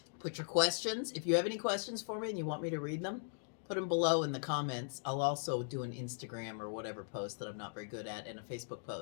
put your questions. If you have any questions for me and you want me to read them, put them below in the comments. I'll also do an Instagram or whatever post that I'm not very good at and a Facebook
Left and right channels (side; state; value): right; silent; digital silence